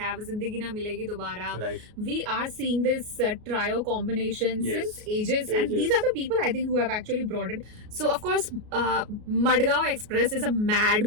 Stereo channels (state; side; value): late; left; 33 ms